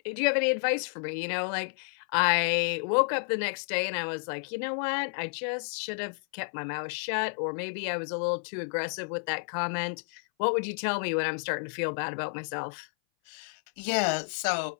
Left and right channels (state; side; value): silent; right; 57 dB below the other